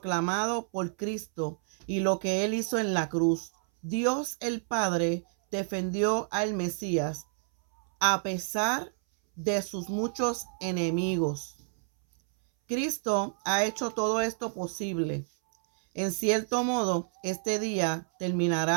por Cristo y lo que él hizo en la cruz. Dios el Padre defendió al Mesías a pesar de sus muchos enemigos. Cristo ha hecho todo esto posible. En cierto modo, este día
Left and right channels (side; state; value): left; silent; 58 dB below the other